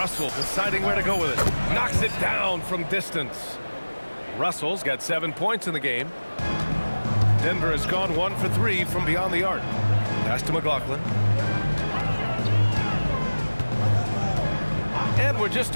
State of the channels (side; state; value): both; inverted; correlation -1.00